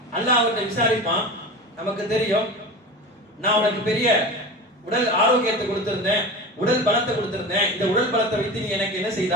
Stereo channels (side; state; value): both; normal; correlation 0.30